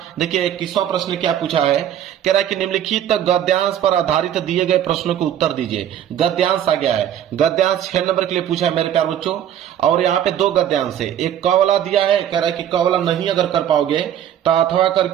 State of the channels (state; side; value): quieter; left; 10.4 dB